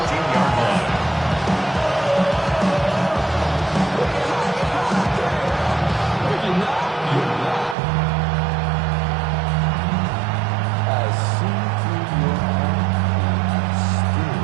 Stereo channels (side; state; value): left; drops out; at 7.8 s